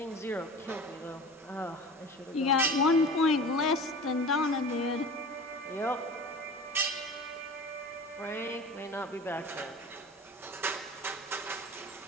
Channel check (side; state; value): both; normal; correlation 0.36